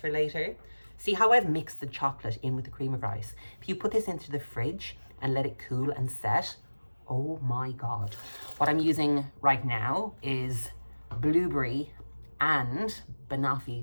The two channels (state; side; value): inverted; both; correlation -1.00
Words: later. See how I've mixed the chocolate in with the cream of rice? If you put this into the fridge and let it cool and set, oh my God. What I'm using right now is blueberry and